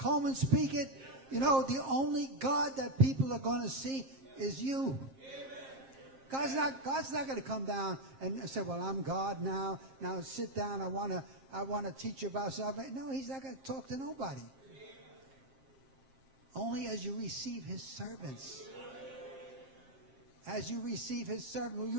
speak it. You know, the only God that people are going to see is you. God's not going to come down and say, well, I'm God now. Now sit down. I want to teach you about salvation. No, he's not going to talk to nobody. Only as you receive his servants. As you receive his servant. When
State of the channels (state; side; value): late; left; 7.5 ms